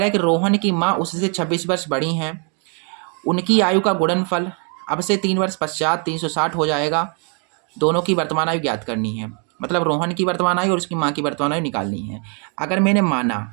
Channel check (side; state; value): left; quieter; 38.6 dB